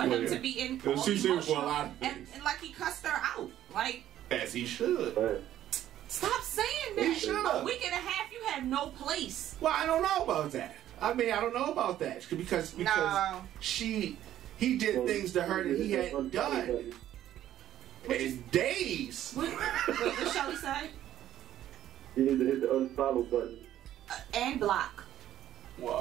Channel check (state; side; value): quieter; left; 12.2 dB